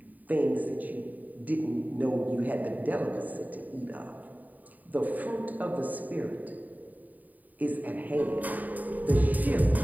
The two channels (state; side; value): late; left; 0.081 ms